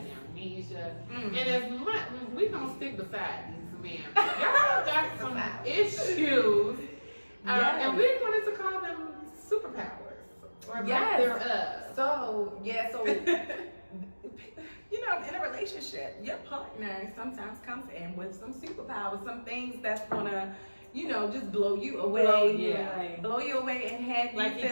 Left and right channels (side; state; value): both; inverted; correlation -1.00